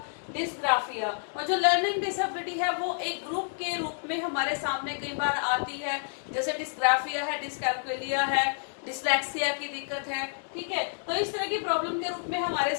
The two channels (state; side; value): silent; right; 58 dB below the other